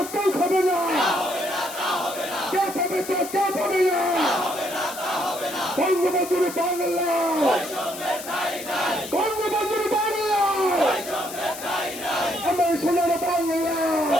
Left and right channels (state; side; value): noise; left; hiss, 11 dB below the sound